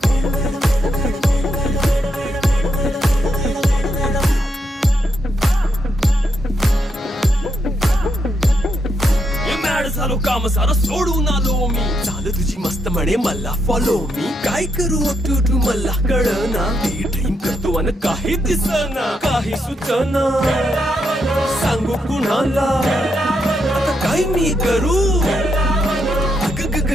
झालो काम सारं सोडून आलो मी चाल तुझी मस्त म्हणे मला फॉलो मी काय करू टू मला कळना ड्रीम करतो आणि काही दिसना काही सुचना सांगू कुणाला आता काय मी करू ग ग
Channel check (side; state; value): both; normal; correlation 0.80